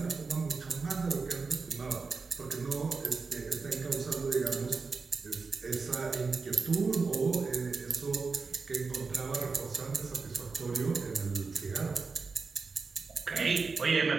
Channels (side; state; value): left; quieter; 4.5 dB